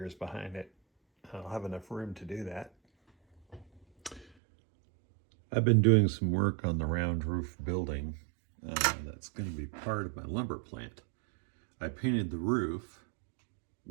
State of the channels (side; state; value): left; drops out; at 4.2 s